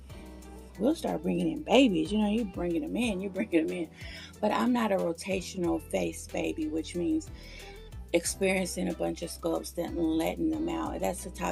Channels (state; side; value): identical; both; correlation 1.00